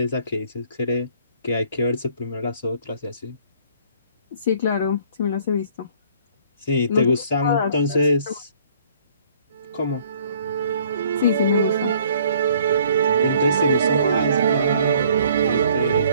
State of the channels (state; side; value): inverted; both; correlation -0.58